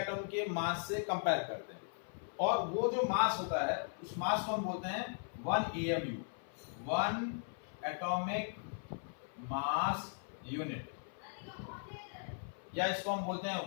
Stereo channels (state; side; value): silent; right; 52 dB below the other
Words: के मास से कंपेयर करते हैं, और वो जो मास होता है उस मास को हम बोलते हैं 1 AMU, 1 एटॉमिक मास यूनिट, या इसको हम बोलते